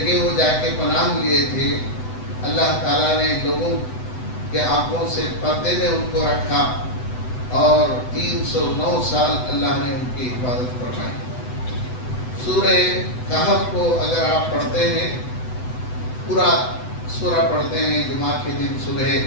وہ جا کے پناہ لیے تھے، اللہ تعالیٰ نے لوگوں کے آنکھوں سے پردے میں ان کو رکھا اور 309 سال اللہ نے ان کی حفاظت فرمائی۔ سورہ کہف کو اگر آپ پڑھتے ہیں، پورا سورہ پڑھتے ہیں، جمعہ کے دن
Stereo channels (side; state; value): right; late; 8.0 ms